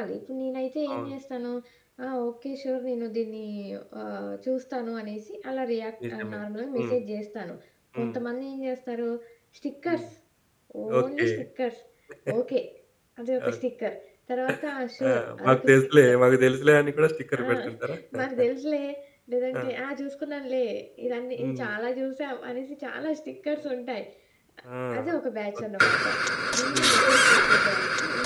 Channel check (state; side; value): identical; both; correlation 1.00